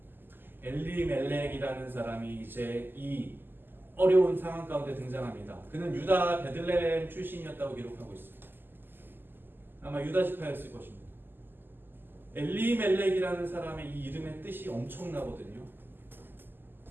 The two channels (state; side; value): late; left; 0.095 ms